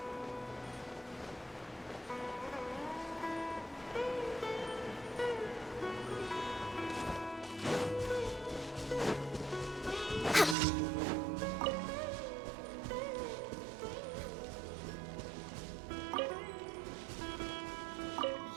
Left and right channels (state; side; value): drops out; left; at 10.6 s